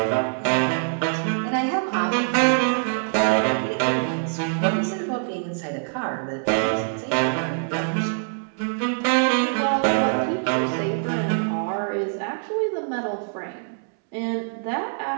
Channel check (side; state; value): left; silent; 63 dB below the other